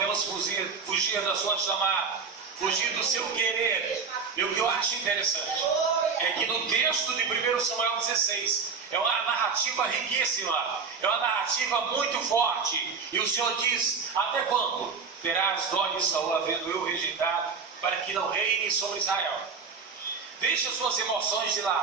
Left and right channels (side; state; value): left; quieter; 5.3 dB